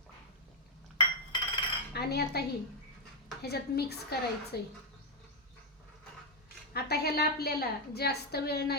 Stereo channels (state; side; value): normal; both; correlation 0.00